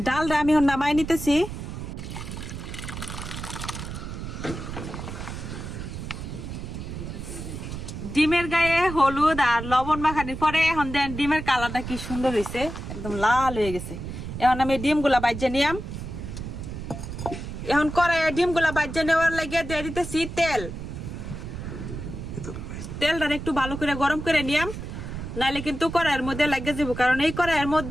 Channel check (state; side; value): noise; right; rumble, 8 dB below the sound